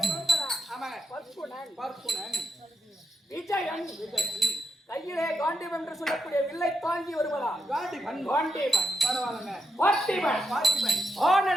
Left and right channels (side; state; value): both; normal; correlation 0.83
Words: பிறந்ததா ஆமாங்க பர்க்குணன் விஜயன் கையிலே காண்டீவன் என்று சொல்லக்கூடிய வில்லை தாங்கி வருவதா காண்டீவன் பரவாயில்லைங்க பார்த்திபன்